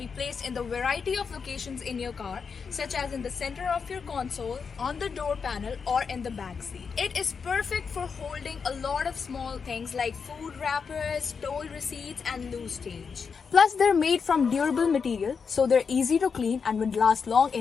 placed in the variety of locations in your car, such as in the center of your console, on the door panel, or in the back seat. It is perfect for holding a lot of small things like food wrappers, toll receipts, and loose change. Plus, they're made from durable material, so they're easy to clean and will last long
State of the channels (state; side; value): quieter; right; 5.8 dB